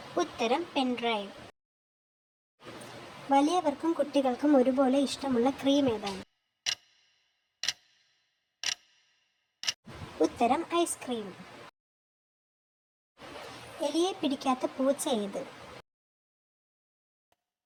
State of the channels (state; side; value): identical; both; correlation 1.00